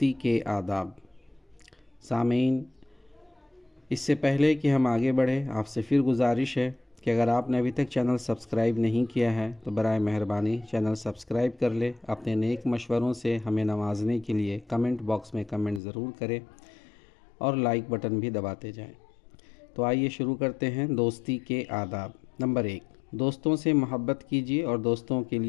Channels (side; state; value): right; drops out; at 15.8 s